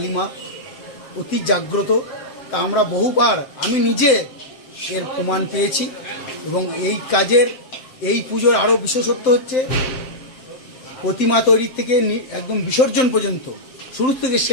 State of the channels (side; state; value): right; late; 7.8 ms